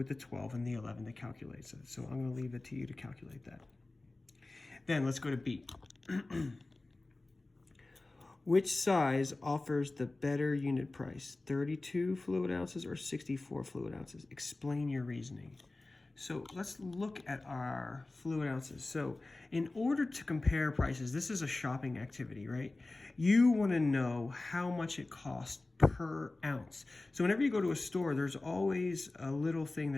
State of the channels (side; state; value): right; quieter; 3.1 dB